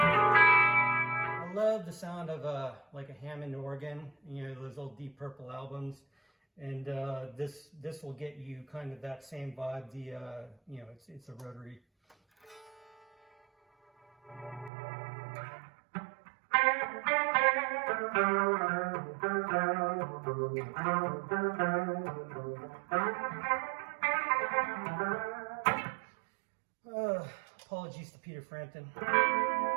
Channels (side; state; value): left; drops out; at 14.7 s